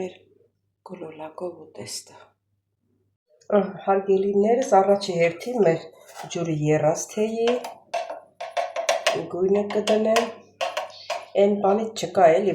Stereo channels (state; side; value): identical; both; correlation 1.00